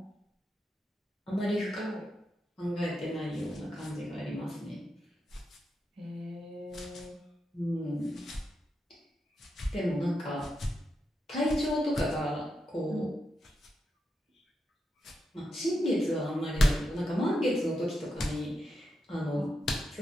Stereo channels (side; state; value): both; normal; correlation 0.85